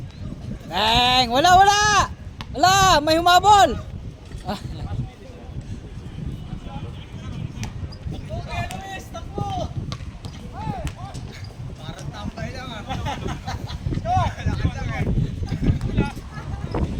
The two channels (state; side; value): identical; both; correlation 1.00